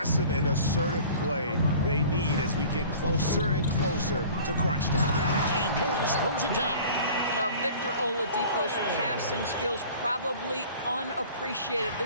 and assertive play they need as we get closer and closer to crunch time. And Morris throws it down. Now, Victor Oladipo's passing skills probably unappreciated.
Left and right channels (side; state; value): both; inverted; correlation -0.45